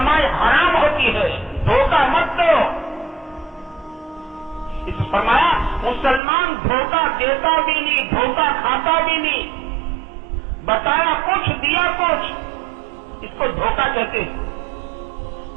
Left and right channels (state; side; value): drops out; left; at 6.2 s